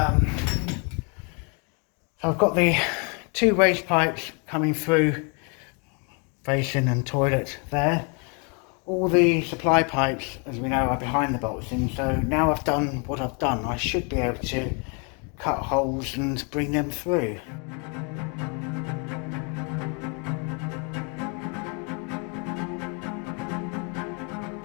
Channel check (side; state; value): right; quieter; 35.5 dB